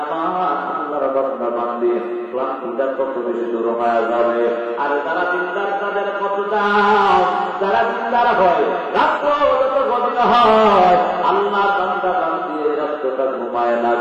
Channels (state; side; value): identical; both; correlation 1.00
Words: আমার আল্লাহর বান্দা বান্দি ক্লান্তিটা কত বেশি দূর হয়ে যাবে। আর যারা দিনদার তাদের কত দাম, যারা দিনদার হয় রাত্র যত গভীর হয় আল্লাহ বান্দা বান্দি রাত্রটা ঘুমায়